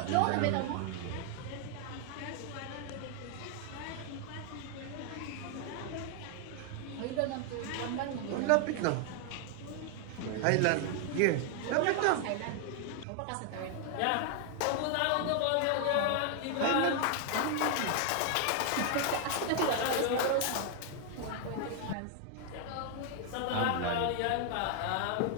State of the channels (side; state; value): both; different; correlation 0.00